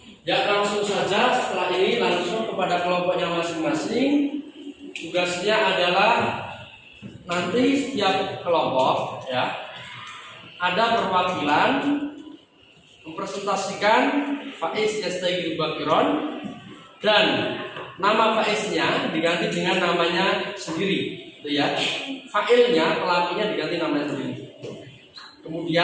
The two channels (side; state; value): both; identical; correlation 1.00